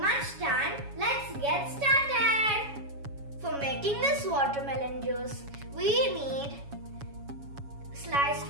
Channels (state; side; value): late; left; 7.2 ms